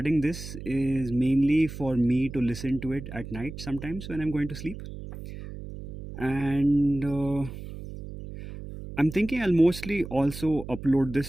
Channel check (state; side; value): noise; right; hum, 11 dB below the sound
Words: this is mainly for me to listen to it at night sometimes when I'm going to sleep. And I'm thinking I'll mostly also upload